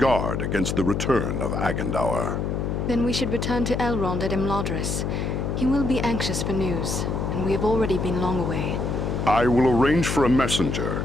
against the return of Agandaûr. Then we should return to Elrond at Imladris. He will be anxious for news, and we have already been long away. I will arrange for a messenger.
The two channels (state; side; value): noise; left; hum, 1 dB below the sound